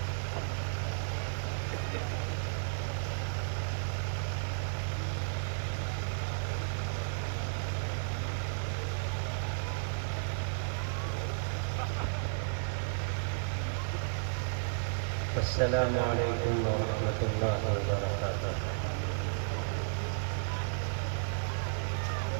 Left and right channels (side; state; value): left; silent; digital silence